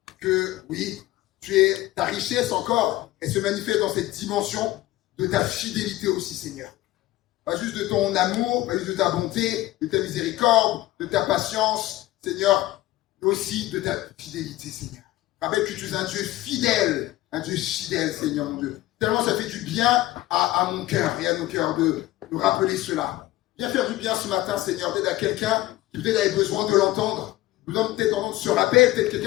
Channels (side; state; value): right; quieter; 16.6 dB